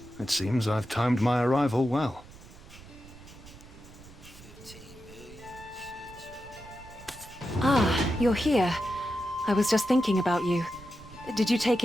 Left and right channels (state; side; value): noise; right; rumble, 19 dB below the sound